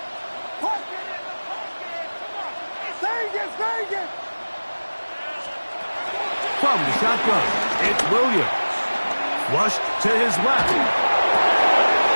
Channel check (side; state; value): both; inverted; correlation -1.00